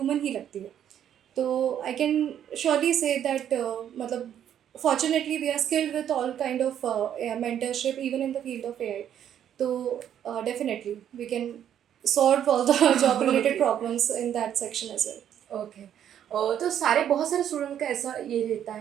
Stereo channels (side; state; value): left; quieter; 9.9 dB